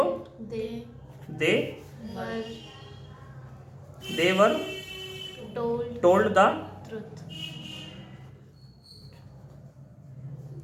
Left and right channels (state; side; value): identical; both; correlation 1.00